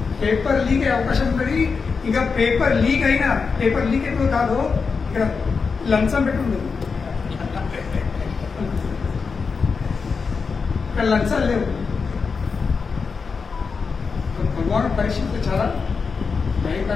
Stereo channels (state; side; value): quieter; right; 5.1 dB